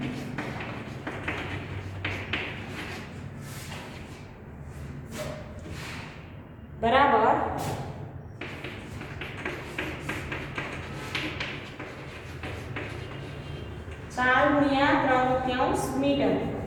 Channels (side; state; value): both; identical; correlation 1.00